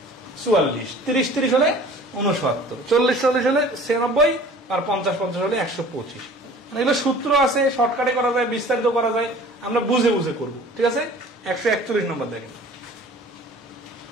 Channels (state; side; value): normal; both; correlation 0.47